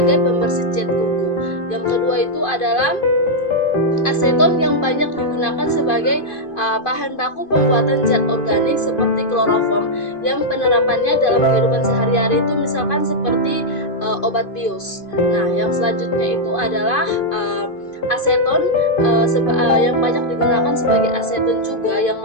pembersih cat kuku. Yang kedua itu adalah aseton yang banyak digunakan sebagai bahan baku pembuatan zat organik seperti kloroform, yang penerapannya dalam kehidupan sehari-hari itu misalkan seperti obat bius. Nah, yang selanjutnya itu adalah aseton yang banyak digunakan sebagai aseton juga, yang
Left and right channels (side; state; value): right; late; 2.5 ms